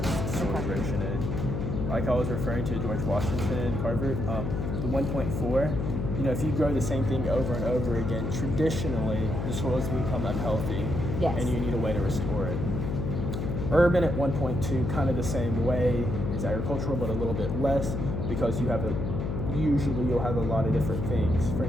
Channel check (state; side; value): noise; left; hum, 2 dB below the sound